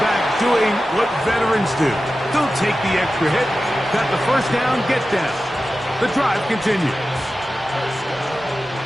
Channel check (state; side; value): normal; both; correlation 0.93